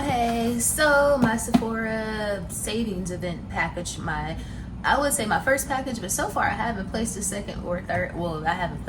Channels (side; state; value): both; identical; correlation 1.00